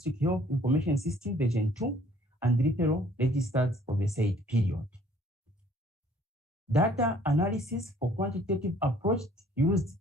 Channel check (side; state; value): both; normal; correlation 0.58